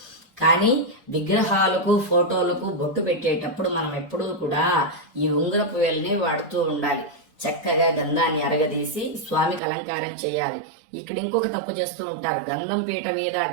కానీ విగ్రహాలకు ఫోటోలకు బొట్టు పెట్టేటప్పుడు మనం ఎప్పుడూ కూడా ఈ ఉంగరపు వేలుని వాడుతూ ఉండాలి. చక్కగా గంధాన్ని అరగదీసి స్వామికి అలంకారం చేయాలి. ఇక్కడ ఇంకొక తప్పు చేస్తూ ఉంటారు, గంధం పీట మీద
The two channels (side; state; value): left; drops out; at 9.6 s